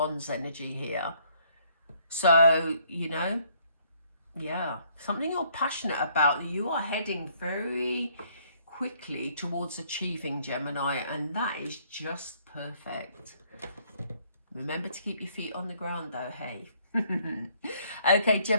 energy here. So, you know, yeah, something you're passionate about, you are heading very quickly towards achieving, Gemini, and that is just perfect. Remember to keep your feet on the ground though, hey. Okay,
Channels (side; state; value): both; inverted; correlation -0.65